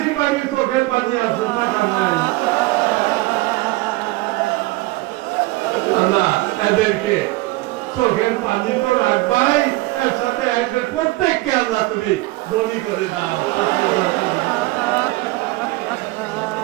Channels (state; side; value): quieter; left; 20.7 dB